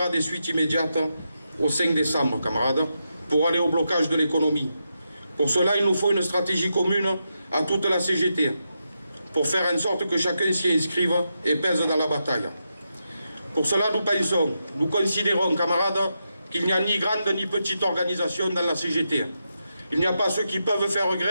des suites immédiates au 5 décembre, camarades, pour aller au blocage de l'économie. Pour cela, il nous faut une stratégie commune à toute la CGT, pour faire en sorte que chacun s'y inscrive et pèse dans la bataille. Pour cela, nous considérons, camarades, qu'il n'y a ni grande ni petite organisation dans la CGT. Il n'y a pas ceux qui peuvent faire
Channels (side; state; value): both; inverted; correlation -0.86